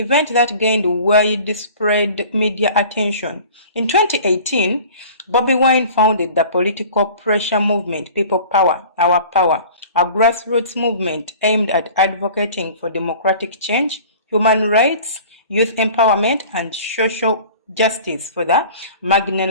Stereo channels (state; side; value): inverted; both; correlation -0.44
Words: that gained widespread media attention. In 2018, Bobi Wine founded the political pressure movement People Power, Our Power, a grassroots movement aimed at advocating for democratic change, human rights, youth empowerment, and social justice for the